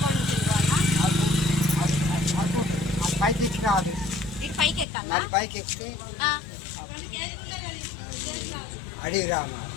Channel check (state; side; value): drops out; right; at 4.9 s